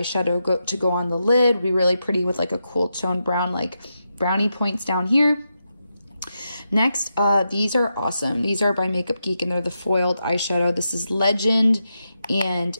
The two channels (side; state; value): both; inverted; correlation -0.86